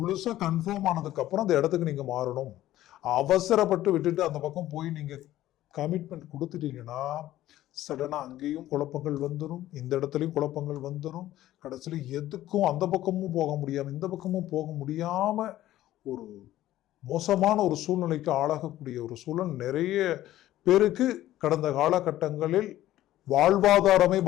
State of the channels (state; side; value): quieter; right; 14.2 dB